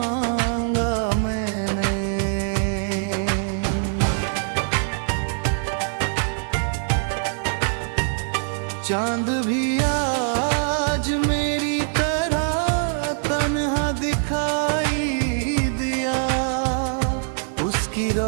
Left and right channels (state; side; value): silent; left; 63 dB below the other